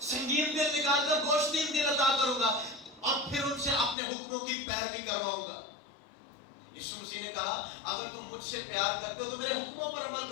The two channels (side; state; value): right; drops out; at 4.0 s